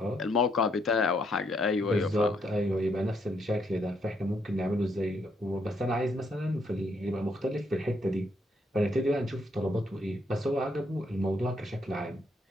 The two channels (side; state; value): both; normal; correlation 0.74